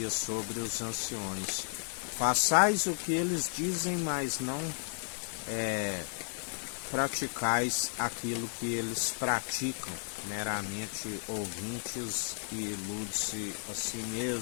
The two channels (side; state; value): right; silent; 55 dB below the other